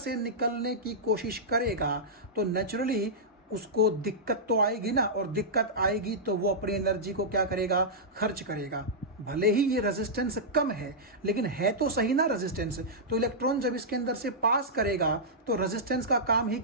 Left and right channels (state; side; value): normal; both; correlation -0.11